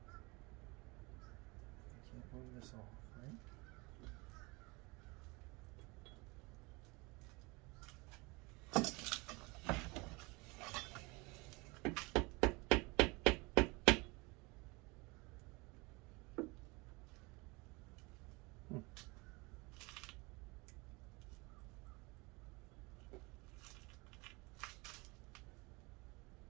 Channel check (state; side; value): quieter; left; 26.0 dB